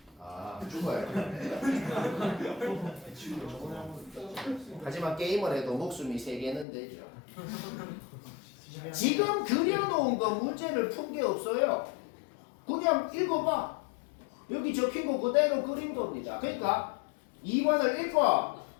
아, 죽어야 돼. 하지만 게임을 해도 목숨이 3개는 되죠. 지금 그려놓은 거 문제를 푼 게 없어요. 그냥 읽어봐. 여기 적힌 거 그대로 그린 겁니다. 그러니까 2번을 읽고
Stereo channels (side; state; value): right; drops out; at 6.7 s